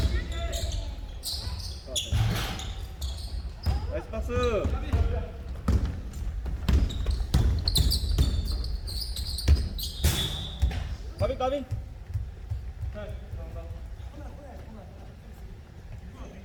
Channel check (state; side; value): identical; both; correlation 1.00